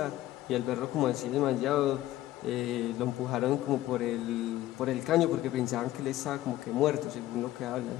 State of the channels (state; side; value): quieter; right; 15.0 dB